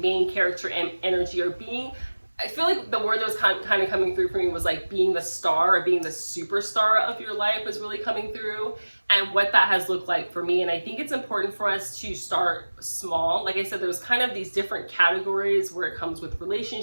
main character energy, or being, I feel like the word that was kind of coming through for me was like being the star, or being the superstar of your life was really coming through, and what that has looked like for me. And I think it's important for us to start small. Like I said, there's kind of these different categories where it comes with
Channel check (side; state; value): both; inverted; correlation -1.00